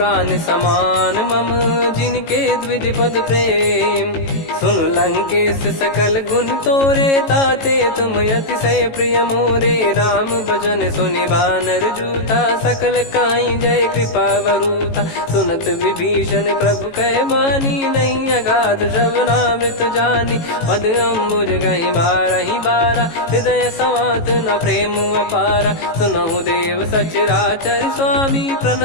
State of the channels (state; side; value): late; right; 18 ms